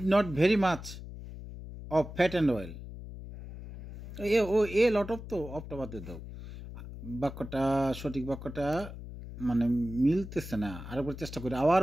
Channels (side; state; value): left; noise; hum, 12 dB below the sound